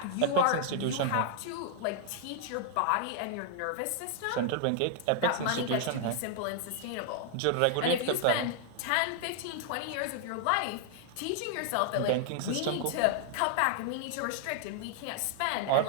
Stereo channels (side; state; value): both; different; correlation 0.00